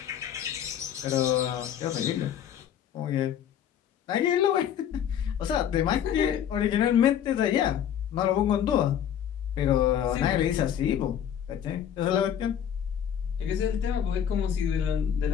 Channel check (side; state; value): right; quieter; 9.4 dB